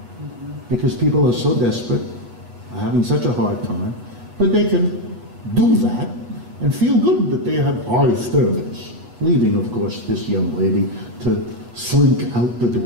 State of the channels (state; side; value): late; left; 8.2 ms